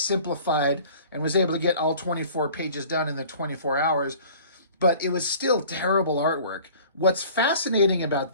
and was able to get all 24 pages done in the 24 hours, but it was still terrible artwork. What's fascinating about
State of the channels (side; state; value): both; inverted; correlation -0.47